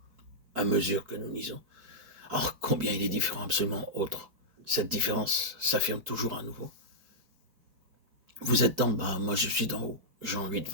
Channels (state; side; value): late; left; 4.7 ms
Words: à mesure que nous lisons. Or, combien il est différent, absolument autre. Cette différence s'affirme toujours à nouveau. Vous êtes d'en bas, moi je suis d'en haut. Jean 8,